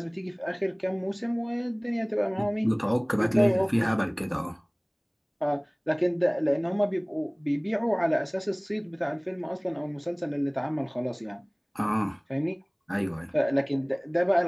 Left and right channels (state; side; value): identical; both; correlation 1.00